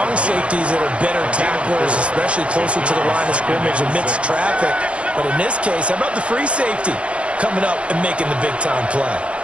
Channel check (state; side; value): late; left; 0.060 ms